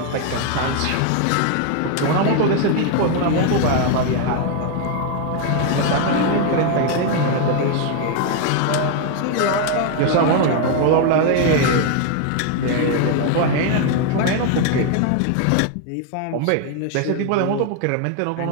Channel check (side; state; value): both; different; correlation 0.01